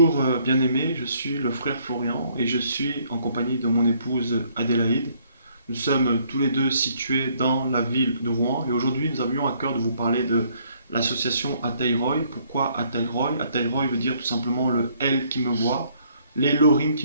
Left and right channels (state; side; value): inverted; both; correlation -0.66